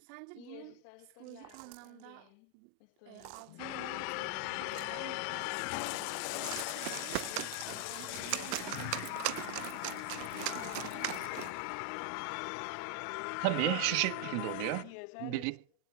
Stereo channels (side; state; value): both; different; correlation 0.00